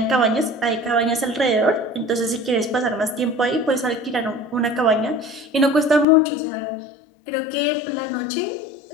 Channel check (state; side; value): drops out; right; at 6.1 s